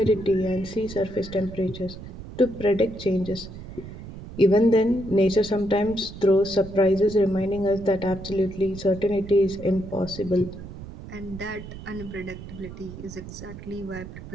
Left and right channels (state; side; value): noise; right; rumble, 13 dB below the sound